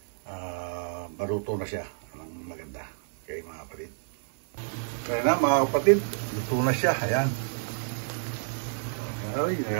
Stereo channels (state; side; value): silent; left; 59 dB below the other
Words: maluto na siya ng maganda. Okay mga kapatid. Kaya na mga kapatid, luto na siya. Ayan. Ay,